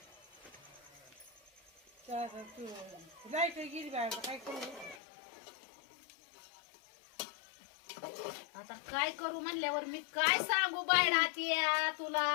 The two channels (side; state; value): right; drops out; at 5.0 s